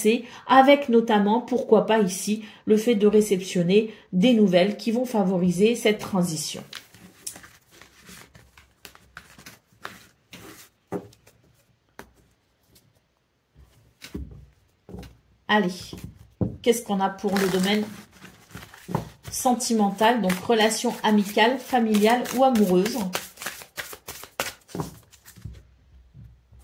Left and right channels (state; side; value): identical; both; correlation 1.00